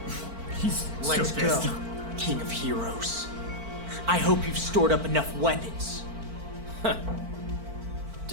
He's Let's so go, pissed. King of Heroes. I hope you've stored up enough weapons.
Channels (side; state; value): left; late; 4.5 ms